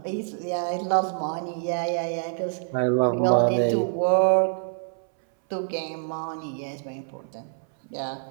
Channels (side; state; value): left; silent; 61 dB below the other